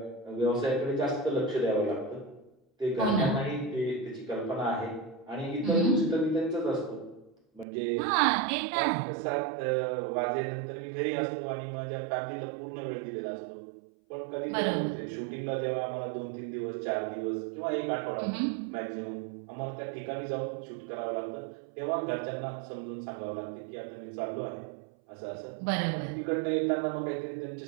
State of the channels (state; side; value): drops out; left; at 7.7 s